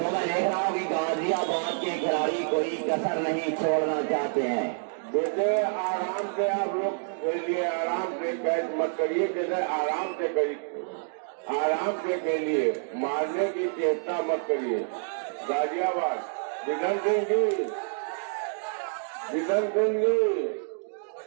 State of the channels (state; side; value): silent; left; digital silence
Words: मैं देख रहा हूँ कि गाजियाबाद के खिलाड़ी कोई कसर नहीं छोड़ना चाहते हैं। देखिए आराम से आप लोग खेलिए, आराम से कैच मत करिए, जैसे आराम से करिए, आराम से खेलिए, मारने की चेष्टा मत करिए। गाजियाबाद विधन सिंह जी, विधन सिंह जी